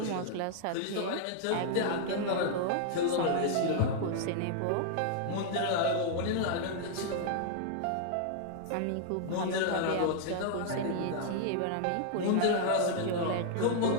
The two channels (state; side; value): different; both; correlation -0.01